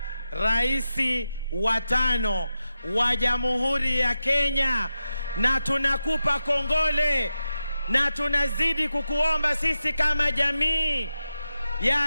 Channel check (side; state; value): both; inverted; correlation -0.90